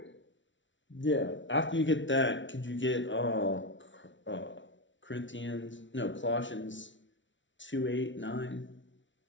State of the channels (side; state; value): right; late; 0.55 ms